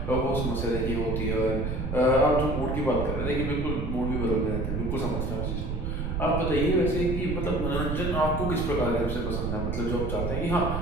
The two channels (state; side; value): noise; right; rumble, 2 dB below the sound